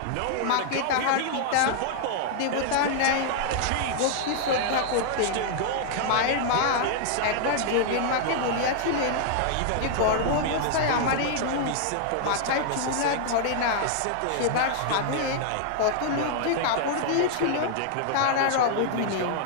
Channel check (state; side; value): different; both; correlation -0.01